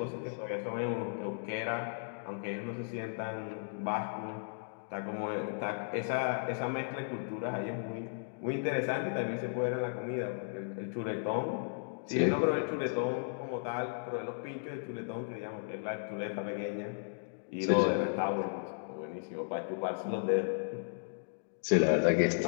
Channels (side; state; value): right; silent; digital silence